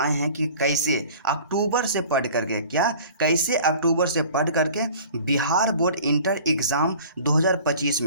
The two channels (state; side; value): inverted; both; correlation -0.45